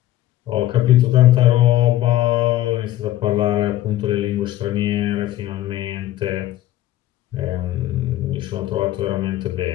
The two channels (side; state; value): right; quieter; 14.4 dB